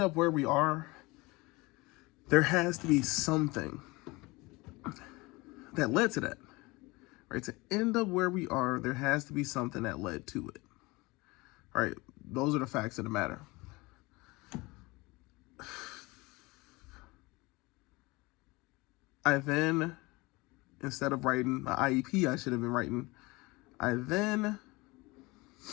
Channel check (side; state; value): right; quieter; 23.4 dB